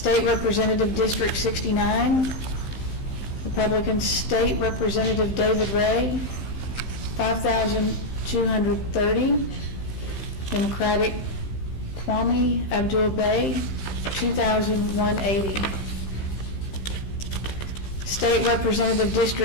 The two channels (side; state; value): right; late; 15 ms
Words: Representative District 69, Republican State Representative David Ray, 5,230. Democratic Kwame Abdul Bey, 2,180. State Representative